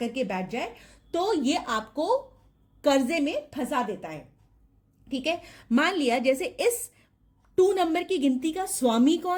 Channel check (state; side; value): identical; both; correlation 1.00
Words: के बैठ जाए तो ये आपको कर्जे में फंसा देता है। ठीक है, मान लिया जैसे इस 2 नंबर की गिनती का स्वामी